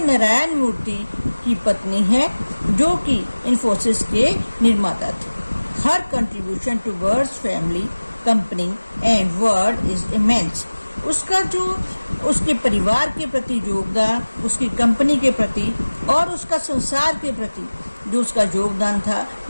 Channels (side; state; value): both; inverted; correlation -1.00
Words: मूर्ति की पत्नी है जो कि इन्फोसिस के निर्माता थे। Her contribution towards family company and world is immense. उसका जो उसके परिवार के प्रति योगदान, उसकी कंपनी के प्रति और उसका संसार के प्रति जो उसका योगदान था